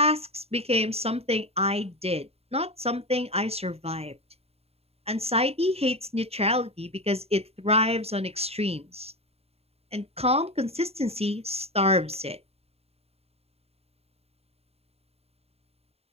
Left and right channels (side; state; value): left; late; 0.29 ms